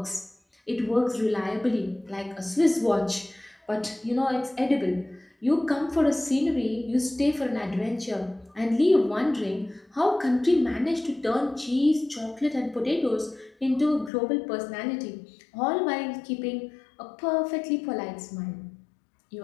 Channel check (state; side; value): drops out; right; at 14.1 s